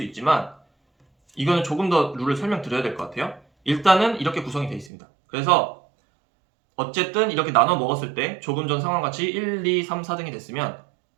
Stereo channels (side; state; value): left; drops out; at 4.9 s